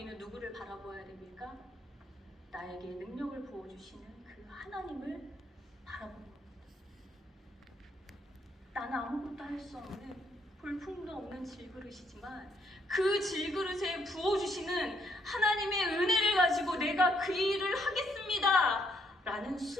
누구를 바라보아야 됩니까? 나에게 능력을 부어주시는 그 하나님을 바라보는 겁니다. 나는 아무것도 할 수 없는 볼품도 없는 질그릇이지만 그 질그릇에 부어주시는 하나님의 은혜를 가지고 내가 그 일을 하겠습니다 라는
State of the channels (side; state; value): both; normal; correlation 0.71